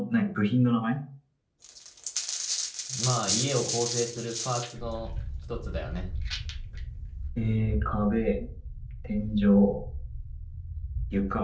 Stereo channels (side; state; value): both; identical; correlation 1.00